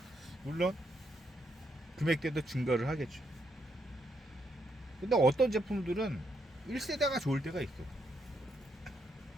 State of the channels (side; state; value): both; normal; correlation 0.77